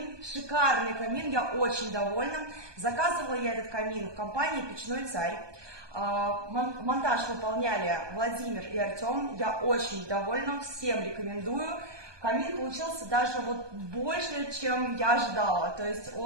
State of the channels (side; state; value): left; late; 1.2 ms